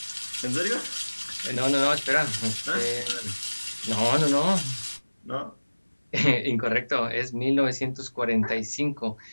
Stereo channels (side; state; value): both; inverted; correlation -1.00